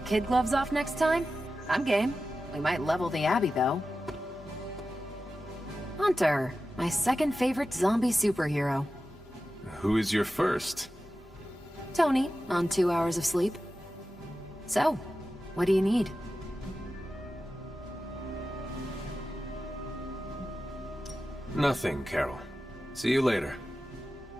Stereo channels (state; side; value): normal; both; correlation 0.93